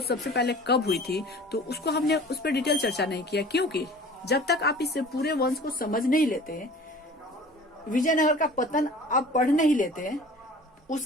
सबसे पहले कब हुई थी, तो उसको हमने उस पर डिटेल चर्चा नहीं किया, क्योंकि जब तक आप इस पूरे वंश को समझ नहीं लेते, विजयनगर का पतन आप पढ़ नहीं लेते,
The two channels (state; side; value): normal; both; correlation 0.45